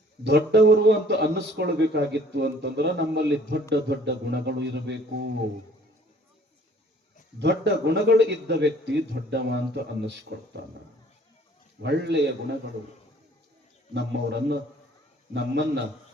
ದೊಡ್ಡವರು ಅಂತ ಅನ್ನಿಸ್ಕೊಳ್ಬೇಕಾಗಿತ್ತು ಅಂತಂದ್ರ ನಮ್ಮಲ್ಲಿ ದೊಡ್ಡ ದೊಡ್ಡ ಗುಣಗಳು ಇರಬೇಕು. ದೊಡ್ಡ ಗುಣಗಳು ಇದ್ದ ವ್ಯಕ್ತಿ ದೊಡ್ಡವ ಅಂತ ಅನ್ನಿಸ್ಕೊಳ್ತಾನ. ಒಳ್ಳೆಯ ಗುಣಗಳು ನಮ್ಮನ್ನ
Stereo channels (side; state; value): both; normal; correlation 0.55